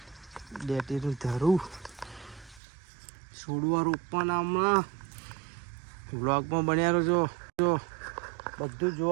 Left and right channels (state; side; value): drops out; left; at 2.6 s